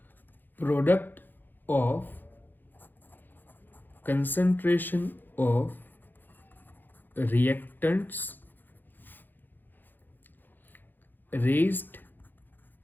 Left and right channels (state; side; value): late; right; 0.090 ms